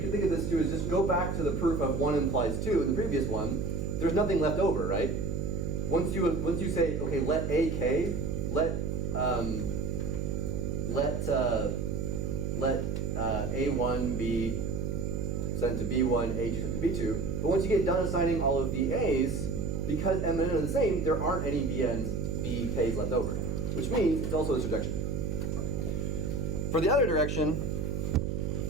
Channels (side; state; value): right; noise; hum, 1 dB below the sound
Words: can think of this too is just go back to the proof of 1 implies 2 in the previous one. There's nothing left over, right? Once you say, okay, let AK, let A1 be sent to B1, A2 sent to B2. But once you get done assigning all of the A's, because M and N are the same, there aren't any BKs left over, which means it's also a surjection. For the other direction,